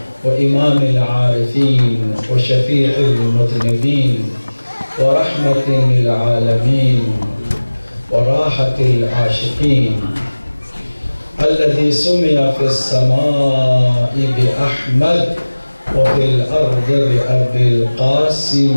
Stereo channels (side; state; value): both; inverted; correlation -1.00